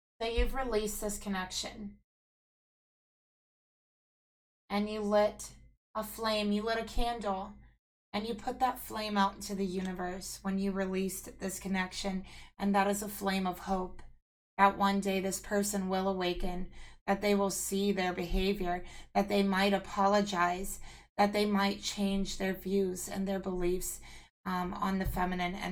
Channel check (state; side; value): identical; both; correlation 1.00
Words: So you've released this connection. And you lit a flame, you lit a candle, and you put that flame out into the universe when you released this connection. And that is a flame of hope that one day this person will awaken, that they will see their behavior, that they might apologize, that they might change their views and their beliefs on the feminine